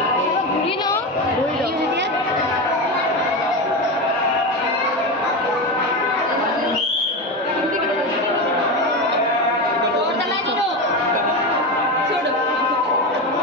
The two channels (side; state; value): both; normal; correlation 0.19